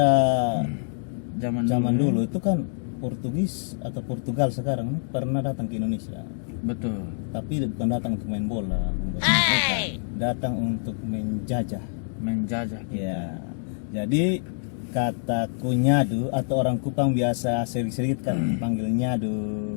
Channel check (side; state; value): right; silent; digital silence